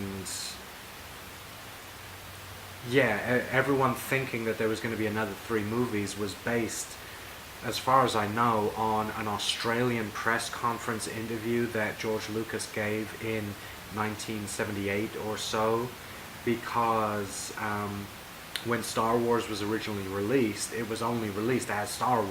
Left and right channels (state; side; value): identical; both; correlation 1.00